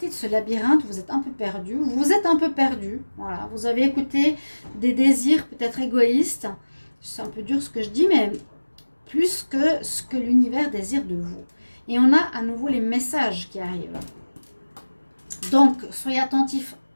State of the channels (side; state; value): both; inverted; correlation -1.00